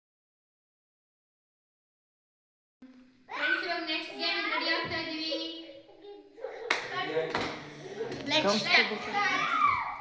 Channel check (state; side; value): identical; both; correlation 1.00